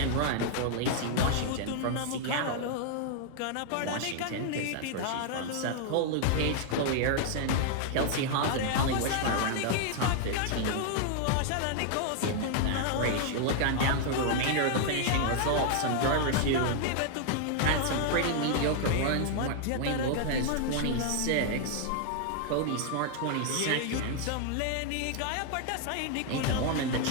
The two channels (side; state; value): both; different; correlation 0.00